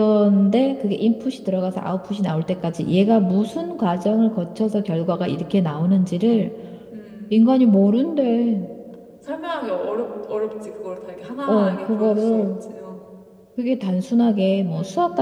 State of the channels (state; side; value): identical; both; correlation 1.00